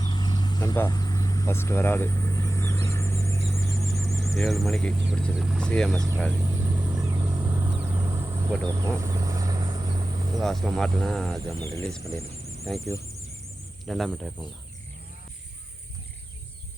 நண்பா ஃபஸ்ட்டு வராது 7 மணிக்கு பிடிச்சது சிஎம்எஸ் ட்ராலி போட்டு வைப்போம். லாஸ்ட்டில் மாட்டினா அது நம்ம ரிலீஸ் பண்ணிடலாம். தேங்க்யூ. 2ஆம் ட்ரை பண்ணலாம்.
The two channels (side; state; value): both; normal; correlation 0.95